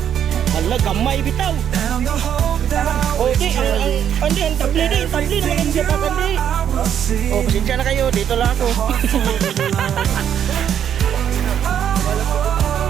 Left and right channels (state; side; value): quieter; left; 9.3 dB